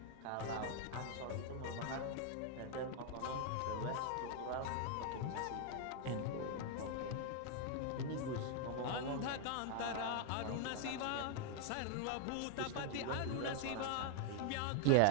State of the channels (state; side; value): different; both; correlation 0.00